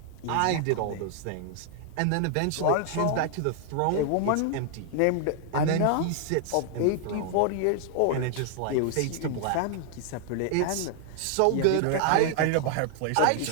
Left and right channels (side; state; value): both; different; correlation 0.00